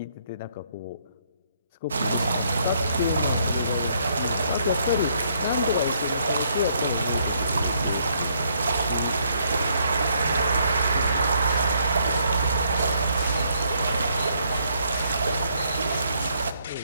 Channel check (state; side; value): inverted; both; correlation -0.70